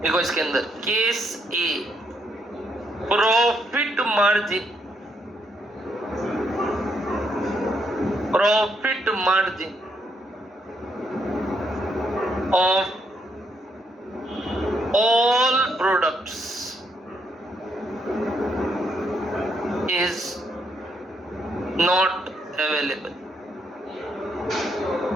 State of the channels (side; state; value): both; normal; correlation 0.76